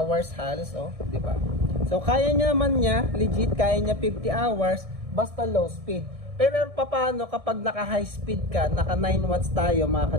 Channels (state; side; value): late; left; 1.6 ms